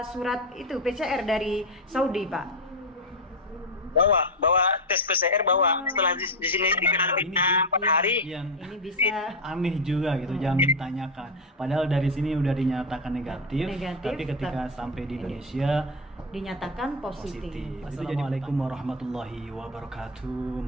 surat itu PCR dari Saudi, Pak? Bawa tes PCR bawa. Setelah di sini dikarantina 4 hari. Yang Ini bisa aneh juga gitu, jangan ditanyakan. Padahal dari sini udah dinyatakan negatif, tapi ketika sampai di Indonesia dinyatakan positif. Assalamualaikum warahmatullahi wabarakatuh.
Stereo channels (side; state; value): both; normal; correlation 0.10